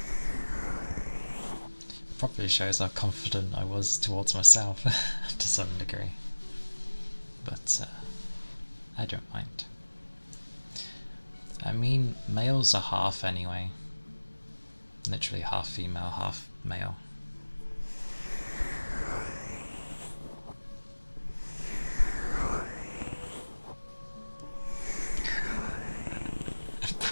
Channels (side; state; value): both; inverted; correlation -1.00